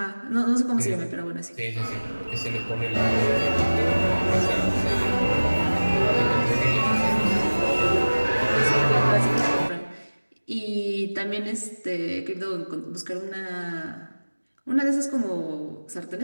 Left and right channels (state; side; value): inverted; both; correlation -1.00